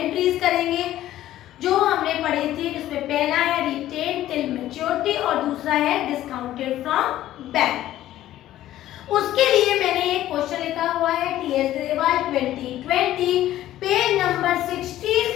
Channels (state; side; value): quieter; right; 13.6 dB